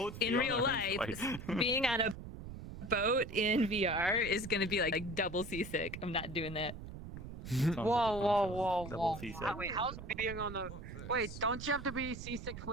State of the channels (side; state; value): right; noise; rumble, 10 dB below the sound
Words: in real life, being on a boat in VR is gonna be like double seasick. I'm not doing that. Whoa. Seasick. Wait, how's being on the? Wait, don't you have to be seasick